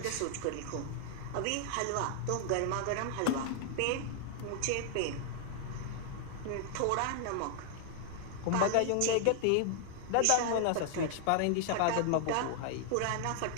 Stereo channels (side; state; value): both; different; correlation 0.00